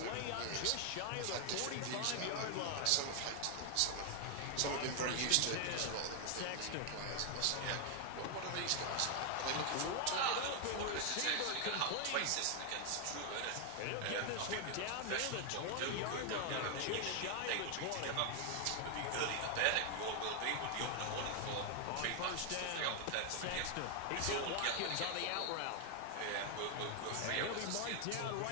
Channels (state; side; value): different; both; correlation 0.00